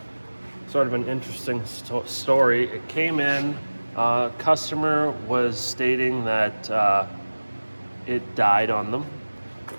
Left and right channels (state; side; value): inverted; both; correlation -1.00